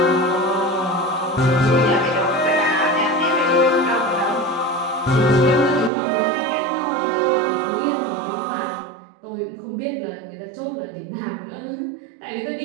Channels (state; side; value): drops out; left; at 5.9 s